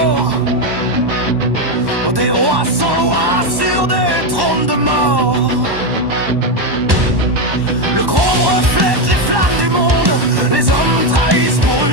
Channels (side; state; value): left; late; 1.1 ms